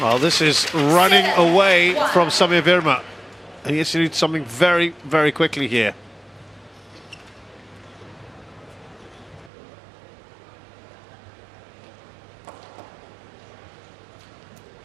this is running away from Sami Verma. And he has to do something very, very quickly here.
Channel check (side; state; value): left; drops out; at 9.5 s